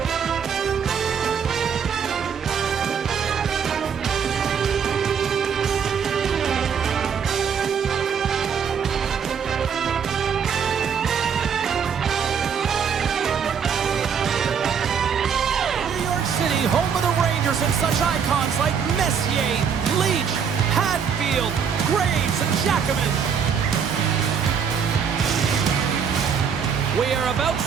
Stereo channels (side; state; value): left; quieter; 7.0 dB